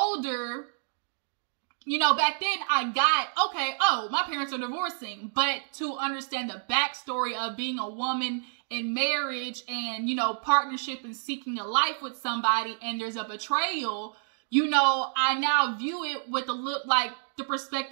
you know, back then I got, okay, oh, my parents are divorcing. But to understand the backstory of being a woman in marriage and, you know, partnership and seeking a life with somebody and there's a betrayal, you know, I now view it with a look like the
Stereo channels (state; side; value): silent; left; 59 dB below the other